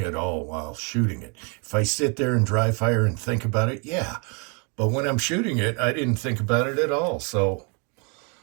at all while shooting it. If I sit there and dry fire and think about it, yeah. But when I'm shooting it, I didn't think about it at all. So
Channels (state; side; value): quieter; left; 33.7 dB